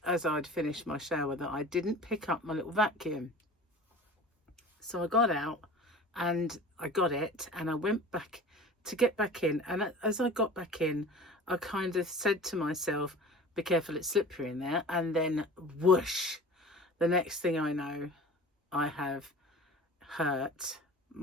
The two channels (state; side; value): normal; both; correlation 0.40